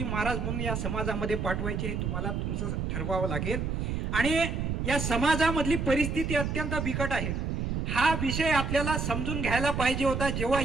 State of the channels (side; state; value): right; noise; rumble, 1 dB below the sound